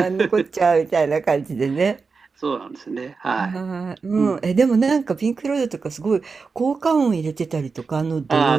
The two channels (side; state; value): left; quieter; 4.7 dB